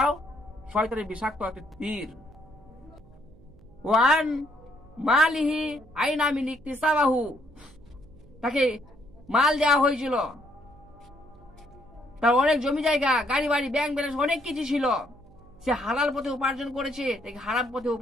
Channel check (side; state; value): right; noise; hum, 25 dB below the sound